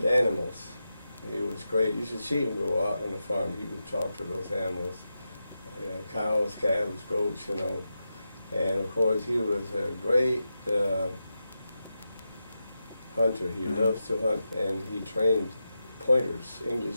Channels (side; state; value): both; inverted; correlation -0.90